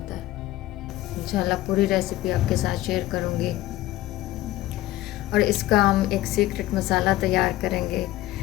है। इंशाल्लाह पूरी रेसिपी आपके साथ शेयर करूँगी। और इसका हम एक सीक्रेट मसाला तैयार करेंगे।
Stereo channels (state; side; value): quieter; right; 15.9 dB